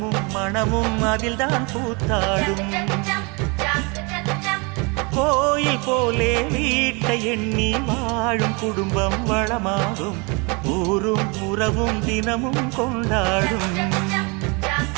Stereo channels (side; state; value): left; quieter; 29.9 dB